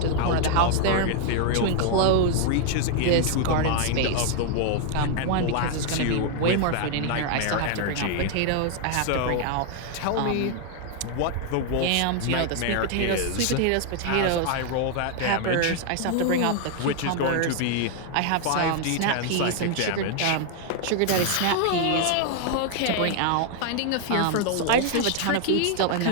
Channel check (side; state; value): both; different; correlation 0.00